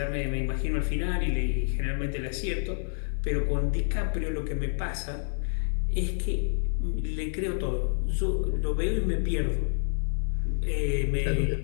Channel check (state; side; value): silent; right; digital silence